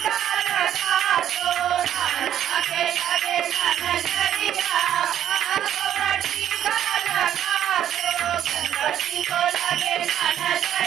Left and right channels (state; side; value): quieter; left; 10.7 dB